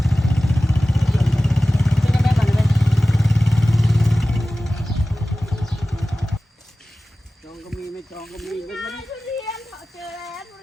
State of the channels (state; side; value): normal; both; correlation 0.96